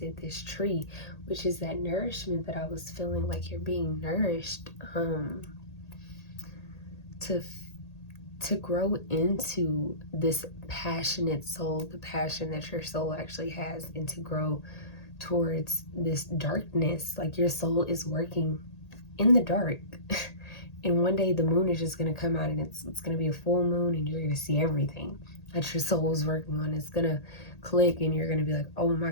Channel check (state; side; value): late; right; 1.8 ms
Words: this tree, which is that nourishment that I was feeling like you're being nourished to grow into this passionate soul, the passion that your soul actually has, and to grow towards this darkness. Like your soul is working in the dark. And one day the moon is just going to come out and it's going to be a full moon and you're going to see everything that your soul is working on. It's going to click and you're going to be like, oh my